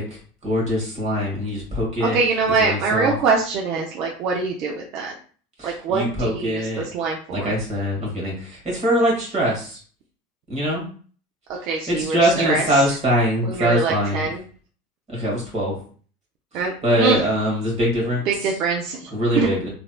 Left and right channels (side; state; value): both; normal; correlation 0.37